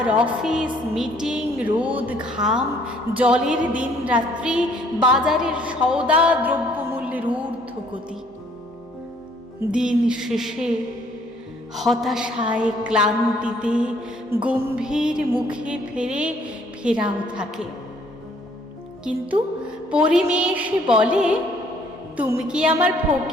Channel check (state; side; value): normal; both; correlation 0.62